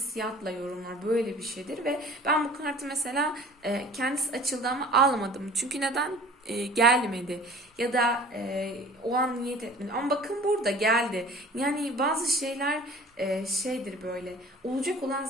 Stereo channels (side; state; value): both; normal; correlation 0.46